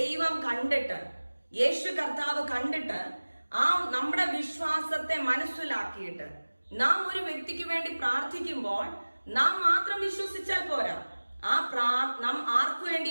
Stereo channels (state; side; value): inverted; both; correlation -1.00